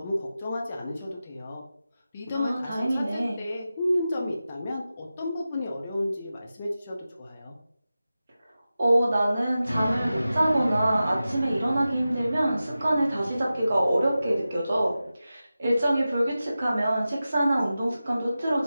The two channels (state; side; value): inverted; both; correlation -0.94